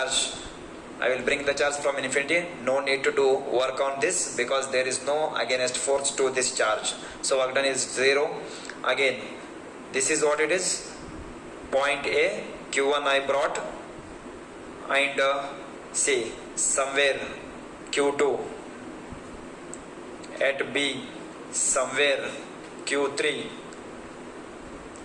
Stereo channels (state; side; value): identical; both; correlation 1.00